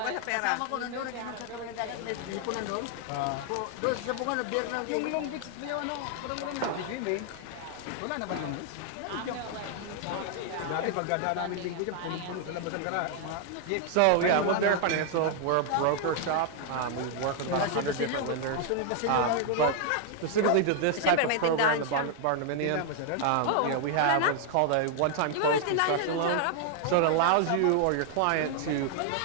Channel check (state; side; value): different; both; correlation 0.00